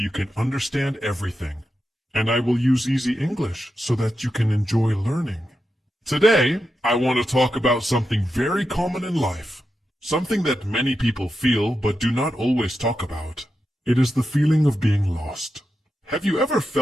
can understand everything. And I will use easy English so that you can enjoy learning. Today, I want to talk about something very common in life. Something that many people feel but do not always talk about. It is the feeling of being lost. Have you ever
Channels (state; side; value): normal; both; correlation 0.88